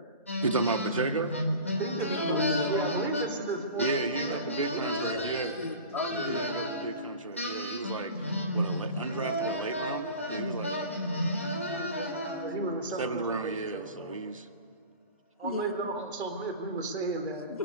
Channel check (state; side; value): inverted; both; correlation -0.37